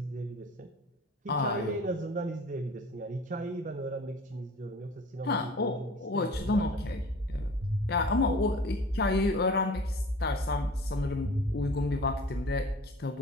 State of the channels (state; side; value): normal; both; correlation 0.44